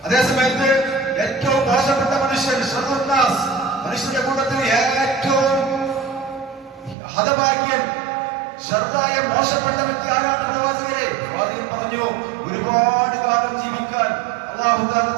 അതേസമയത്ത് ഏറ്റവും മോശപ്പെട്ട മനുഷ്യൻ, മനുഷ്യരുടെ കൂട്ടത്തിൽ ഏറ്റവും ഹതഭാഗ്യൻ, ശർദായ മോശപ്പെട്ട വ്യക്തി ആരാണ്? പ്രവാചകരെ. പ്രവാചകൻ പറഞ്ഞു, ഒരുപാട് കാലം ജീവിക്കാൻ അല്ലാഹു തആല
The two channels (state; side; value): drops out; left; at 7.0 s